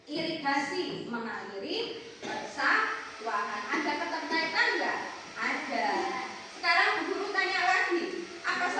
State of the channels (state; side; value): identical; both; correlation 1.00